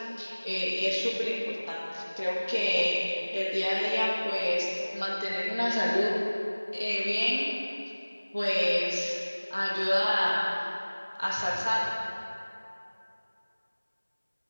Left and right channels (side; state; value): both; inverted; correlation -1.00